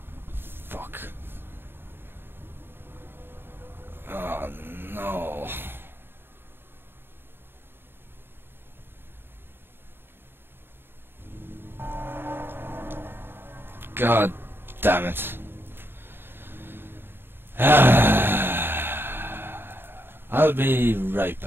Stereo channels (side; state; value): left; late; 0.10 ms